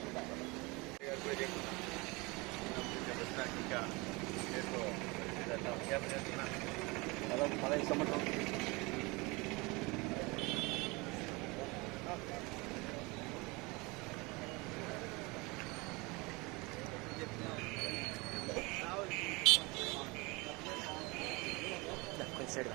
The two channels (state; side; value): quieter; left; 25.7 dB